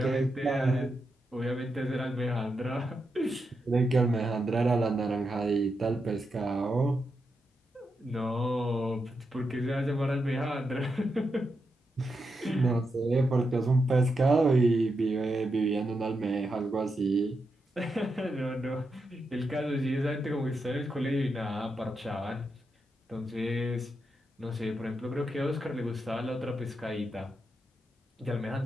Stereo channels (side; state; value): both; normal; correlation 0.85